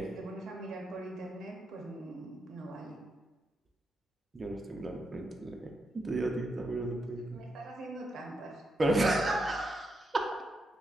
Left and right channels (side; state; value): both; normal; correlation 0.83